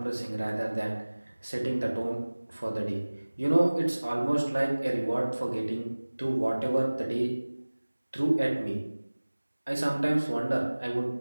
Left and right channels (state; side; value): inverted; both; correlation -1.00